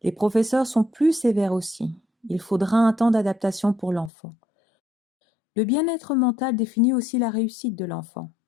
Les professeurs sont plus sévères aussi. Il faudra un temps d'adaptation pour l'enfant. Le bien-être mental définit aussi la réussite de l'enfant.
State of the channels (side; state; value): right; drops out; at 4.1 s